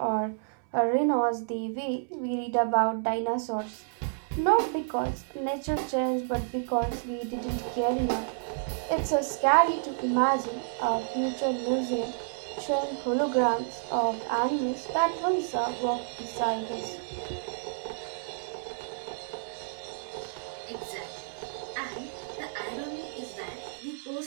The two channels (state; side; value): silent; left; 58 dB below the other